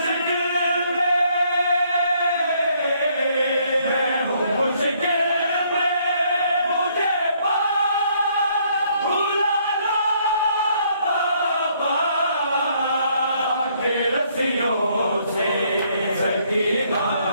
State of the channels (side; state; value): both; inverted; correlation -0.67